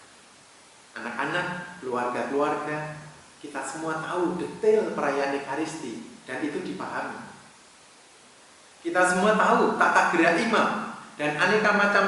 anak-anak, keluarga-keluarga, kita semua tahu detail perayaan Ekaristi dan itu dipahami. Kita semua tahu tata gerak imam dan aneka macam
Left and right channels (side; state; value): both; identical; correlation 1.00